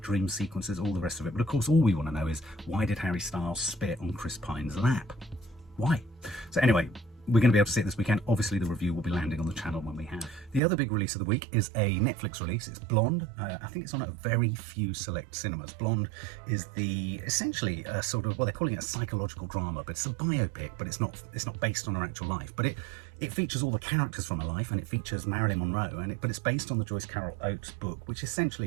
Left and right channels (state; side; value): drops out; left; at 10.6 s